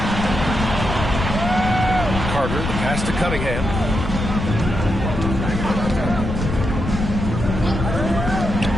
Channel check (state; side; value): noise; left; rumble, 4 dB below the sound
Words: Carter, pass to Cunningham.